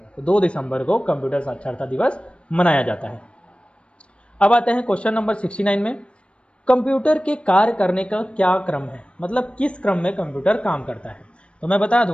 तो 2 दिसंबर को कंप्यूटर साक्षरता दिवस मनाया जाता है। अब आते हैं क्वेश्चन नंबर 69 में। कंप्यूटर के कार्य करने का क्या क्रम है? मतलब किस क्रम में कंप्यूटर काम करता है? तो मैं बता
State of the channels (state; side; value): late; right; 0.059 ms